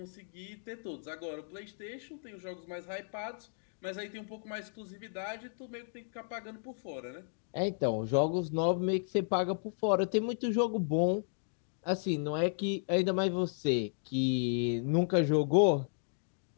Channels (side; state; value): right; silent; digital silence